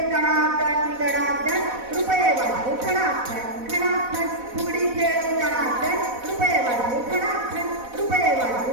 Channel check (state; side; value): late; left; 4.1 ms